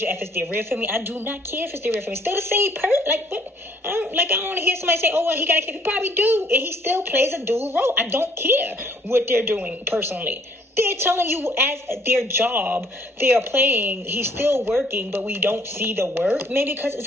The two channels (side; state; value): both; normal; correlation 0.62